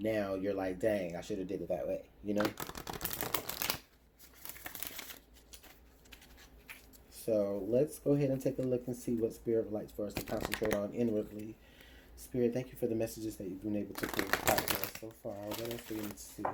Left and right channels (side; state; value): both; identical; correlation 1.00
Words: you're like, dang, I should have did it that way. So let's go ahead and take a look and see what Spirit would like for us to concentrate on inwardly. Spirit, thank you for the messages that you've been able to create so far. What else do we need to see?